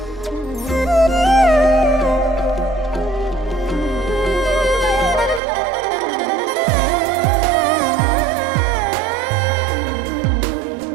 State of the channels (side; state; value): left; drops out; at 5.4 s